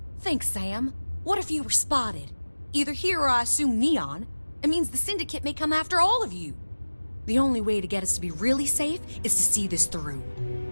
Thanks, Sam. What if you were spotted? Either here or I assume Neon. It means the Syndicate may come after all of you. The only way to get us to be really safe is to see this through.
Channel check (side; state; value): both; inverted; correlation -1.00